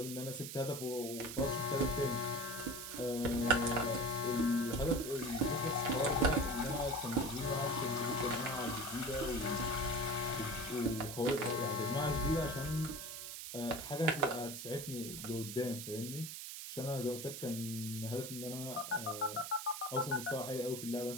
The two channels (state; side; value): noise; right; hiss, 8 dB below the sound